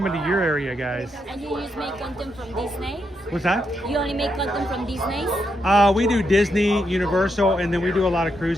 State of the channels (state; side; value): normal; both; correlation 0.81